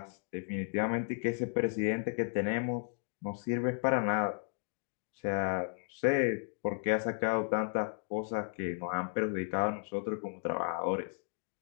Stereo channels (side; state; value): right; silent; 55 dB below the other